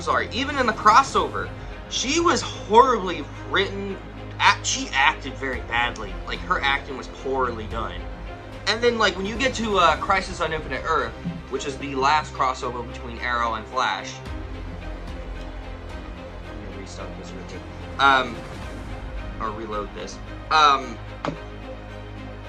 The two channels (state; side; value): identical; both; correlation 1.00